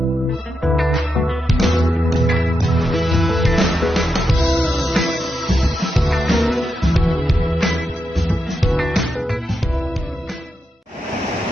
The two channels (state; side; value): normal; both; correlation 0.86